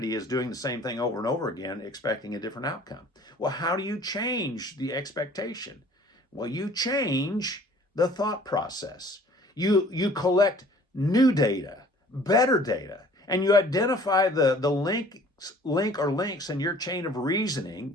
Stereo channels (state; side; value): normal; both; correlation 0.52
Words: is doing the same thing over and over again, expecting a different outcome. Well, how do you change the expectation? Well, you change the thought process. You collect new data, better data, and you identify the link or links in your chain of